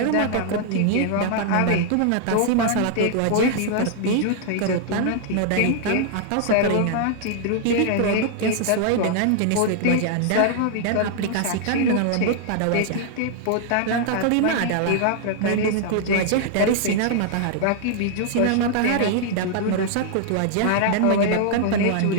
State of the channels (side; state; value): both; different; correlation -0.01